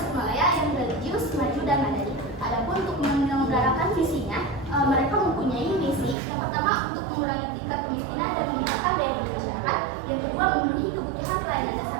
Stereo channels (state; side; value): drops out; left; at 6.2 s